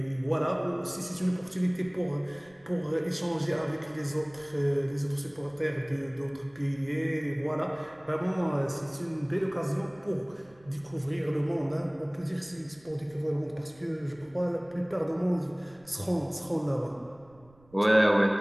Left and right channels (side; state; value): right; noise; rumble, 28 dB below the sound